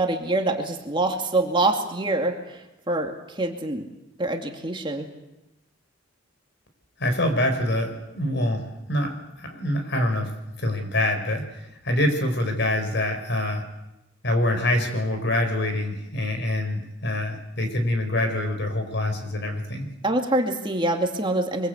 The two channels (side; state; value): both; normal; correlation 0.42